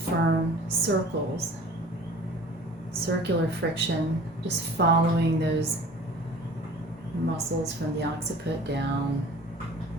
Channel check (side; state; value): both; normal; correlation 0.44